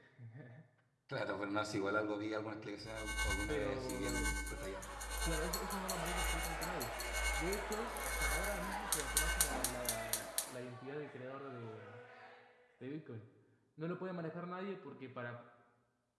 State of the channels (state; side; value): identical; both; correlation 1.00